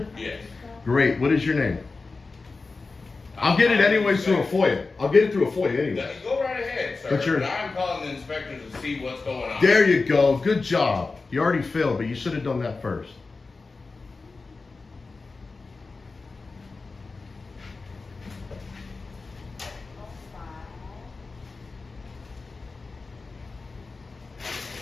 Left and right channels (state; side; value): quieter; right; 3.9 dB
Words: Yes. Great. What is your name? I'll get it anyways through a FOIA. I'll get it through a FOIA anyway. Go right ahead, sir. But you're- I'm calling the inspector to see what's going on. There you go. Good job. You already failed, but you should have done that first.